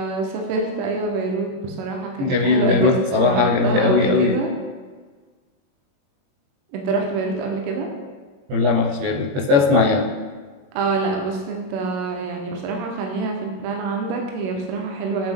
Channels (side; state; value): left; late; 21 ms